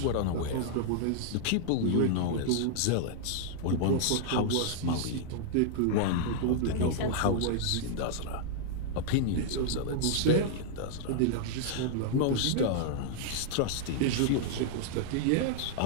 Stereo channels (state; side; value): different; both; correlation -0.01